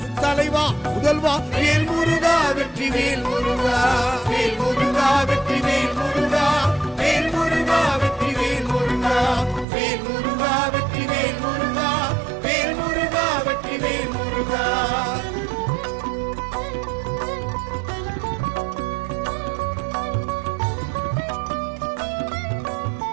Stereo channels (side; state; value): left; drops out; at 9.7 s